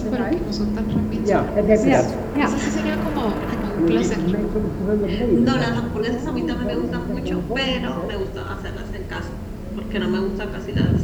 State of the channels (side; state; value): both; identical; correlation 1.00